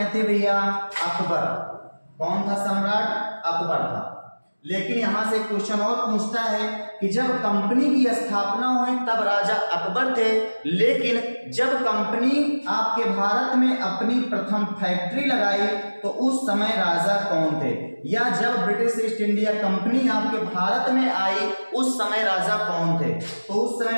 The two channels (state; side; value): inverted; both; correlation -1.00